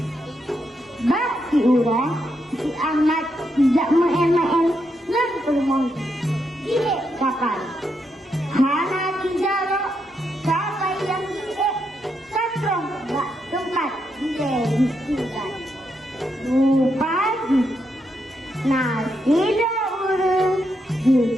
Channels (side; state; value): both; normal; correlation 0.81